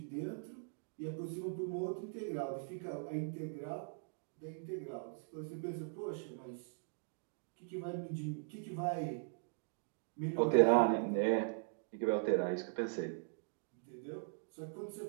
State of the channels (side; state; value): left; silent; digital silence